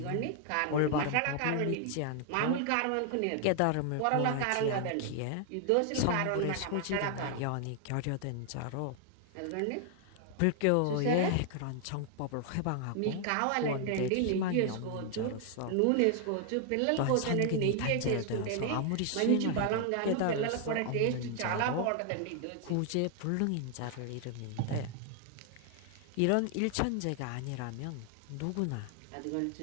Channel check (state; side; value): different; both; correlation 0.00